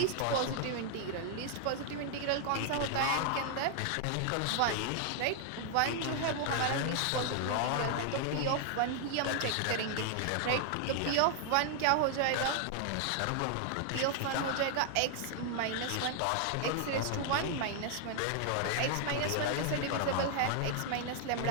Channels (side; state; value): both; different; correlation 0.00